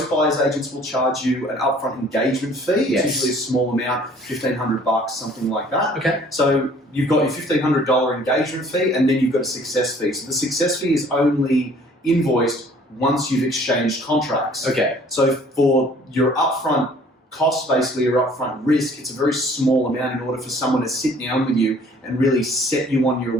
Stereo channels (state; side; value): normal; both; correlation 0.55